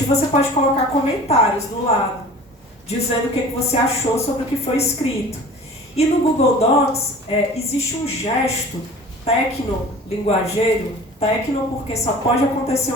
E você pode colocar comentários do lado, dizendo o que você achou sobre o que foi escrito. E no Google Docs existe um gesto tecno-linguageiro, tecno porque só pode acontecer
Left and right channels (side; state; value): both; normal; correlation 0.42